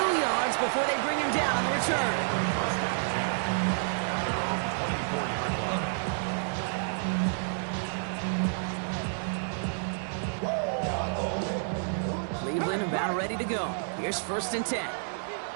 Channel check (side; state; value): left; silent; digital silence